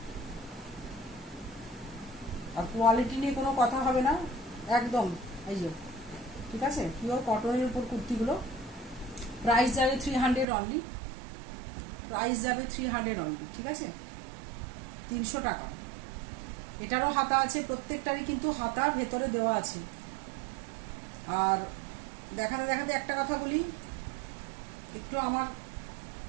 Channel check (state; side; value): drops out; left; at 10.5 s